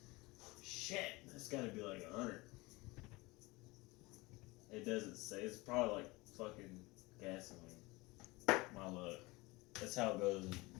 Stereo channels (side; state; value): right; quieter; 22.9 dB